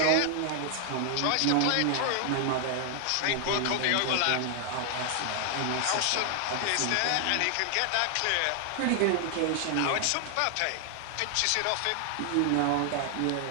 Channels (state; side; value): different; both; correlation 0.00